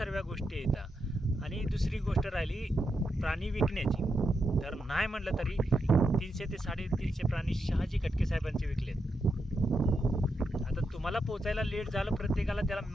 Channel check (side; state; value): both; normal; correlation 0.84